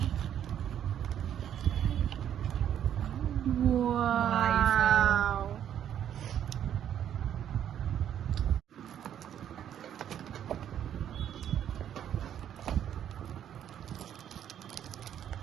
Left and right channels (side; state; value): left; quieter; 10.0 dB